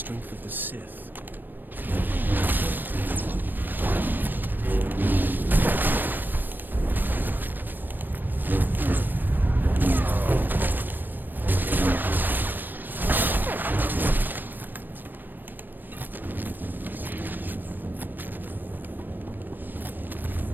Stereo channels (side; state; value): left; late; 0.092 ms